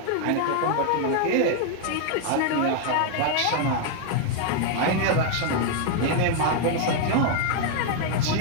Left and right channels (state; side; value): different; both; correlation 0.00